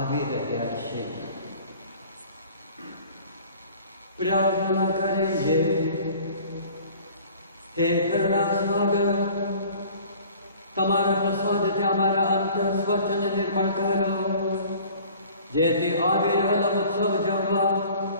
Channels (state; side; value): inverted; both; correlation -0.49